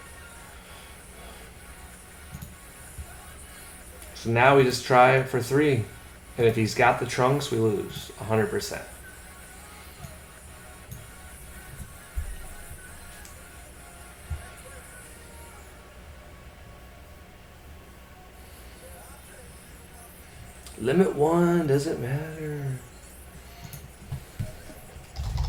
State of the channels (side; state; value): both; identical; correlation 1.00